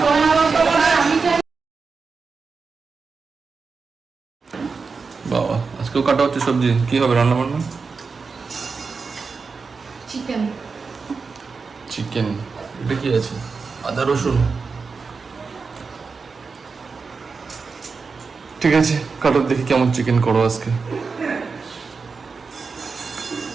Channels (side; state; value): left; quieter; 4.8 dB